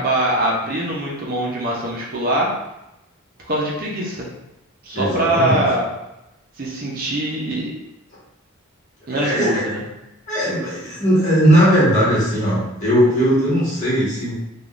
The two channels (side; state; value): both; normal; correlation 0.44